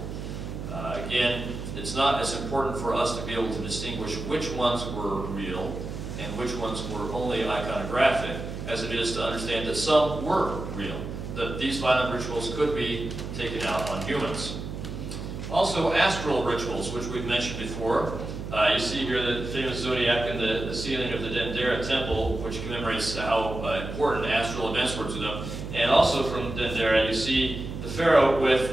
Again, it's not as important for us to be able to distinguish which ones were real and which ones were only iconographic, as it is to understand that some were real, that these violent rituals could be taken out on humans. Also, astral rituals, which we've mentioned before. You see here the famous zodiac in the ceiling of the Dendera temple, which commemorates how important astral events were to them. And also from Dendera, you see the pharaoh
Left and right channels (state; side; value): noise; right; hum, 7 dB below the sound